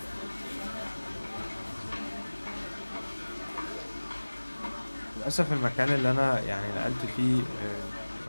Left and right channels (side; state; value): both; inverted; correlation -1.00